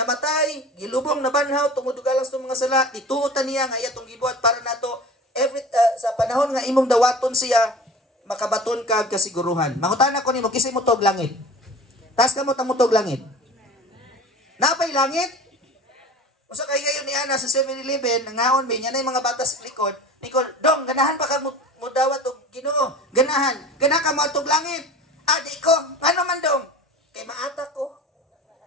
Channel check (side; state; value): both; normal; correlation 0.39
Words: gilubong na banhaw, tungod galang sa mga sala, ituotan niya nga iyatong gibuhat para nato sa panahon nga imong dawaton siya, makabaton ka kasiguruhan. Mangutan ako nimo, kisay mo tog langit. Taas ka mo tog langit. Napay langit? Usa kay gayon ni ana sa 7-Eleven, nangaon mi nya nay mga batas likod. Nikol, dong ganahan pa ka mo dawat og Ginoo. Ganahan. Gana ka mo tog langit. Adi ko, ngano man dong? Kay maatak ko.